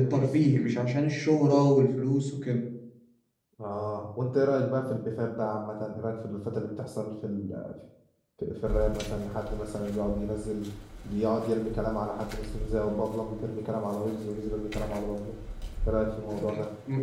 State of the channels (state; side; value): identical; both; correlation 1.00